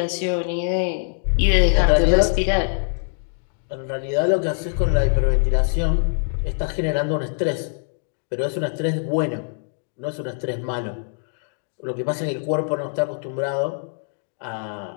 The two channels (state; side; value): silent; right; digital silence